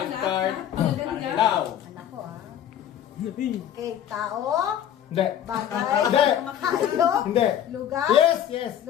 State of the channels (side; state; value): right; quieter; 10.3 dB